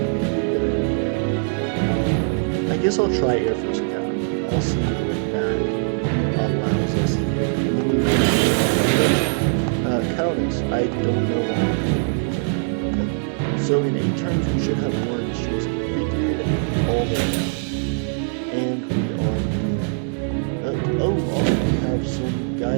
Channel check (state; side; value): silent; left; 59 dB below the other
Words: may be a good idea. I guess I'll try Air Force Academy. I'll see what that allows us here, and then we're going to go into production. Countess, I don't know why I haven't been using that. Okay. So in 8 turns we should have war and chase figured all the way out. And we are moving. Oh, awesome. We have some